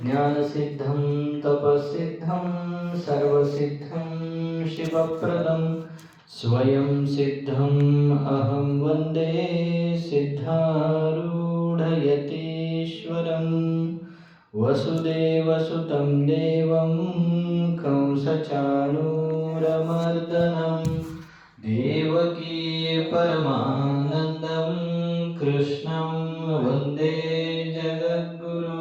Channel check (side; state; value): both; identical; correlation 1.00